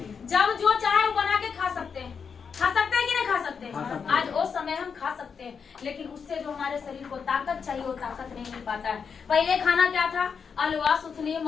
जब जो चाहे वो बना के खा सकते हैं, कि नहीं खा सकते हैं? आज वो समय हम खा सकते हैं, लेकिन उससे जो हमारे शरीर को ताकत चाहिए वो ताकत नहीं मिल पाता है। पहले खाना क्या था? अलवा, सुथनी,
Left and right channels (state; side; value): quieter; right; 6.2 dB